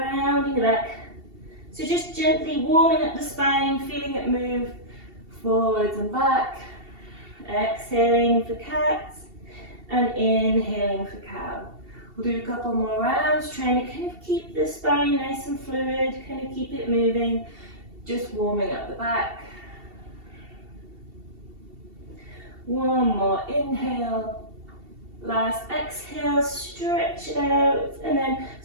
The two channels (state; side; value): late; left; 2.7 ms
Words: the back. So just gently warming up the spine, feeling it move forwards and back. Exhaling for cat and inhaling for cow. We'll do a couple more rounds, trying to kind of keep the spine nice and fluid, kind of keep it moving, just warming up the back. One more inhale. Last exhale, stretch it out, and then